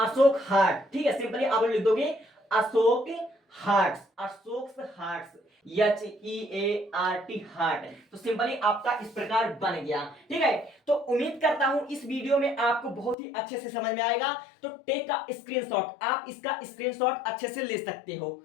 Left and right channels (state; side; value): drops out; right; at 13.2 s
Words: हार्ट, ठीक है, सिंपली आप लोग लिख दोगे Ashok hearts, Ashok hearts, HEART heart. तो सिंपली आपका इस प्रकार बन गया, ठीक है। तो उम्मीद करता हूं इस वीडियो में आपको बहुत ही अच्छे से समझ में आएगा। तो टेक का स्क्रीनशॉट, आप इसका स्क्रीनशॉट अच्छे से ले सकते हो,